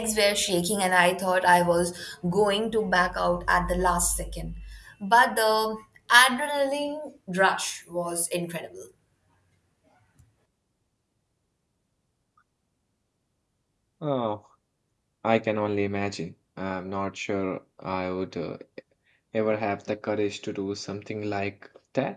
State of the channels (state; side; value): identical; both; correlation 1.00